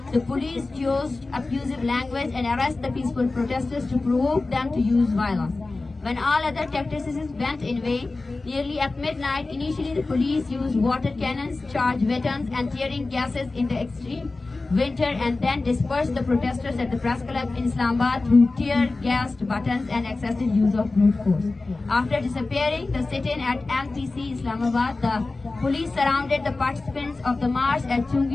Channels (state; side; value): quieter; right; 3.4 dB